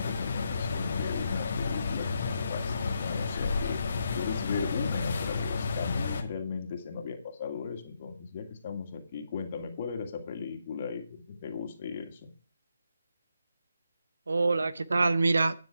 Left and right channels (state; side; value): inverted; both; correlation -0.81